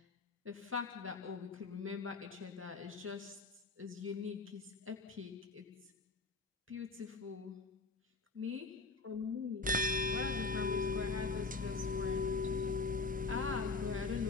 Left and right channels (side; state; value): right; quieter; 3.8 dB